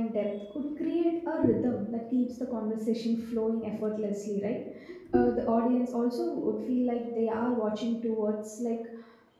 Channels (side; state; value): both; identical; correlation 1.00